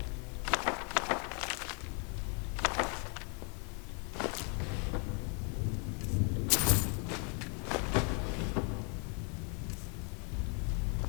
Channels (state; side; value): quieter; right; 37.6 dB